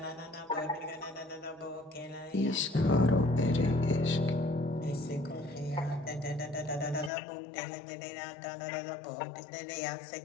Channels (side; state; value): right; drops out; at 7.1 s